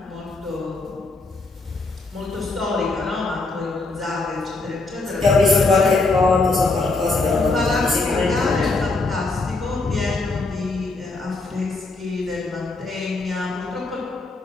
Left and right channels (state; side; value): quieter; right; 3.4 dB